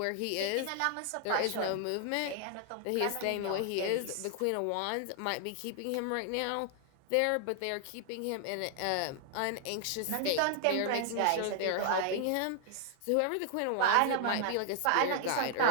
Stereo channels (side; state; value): both; different; correlation 0.00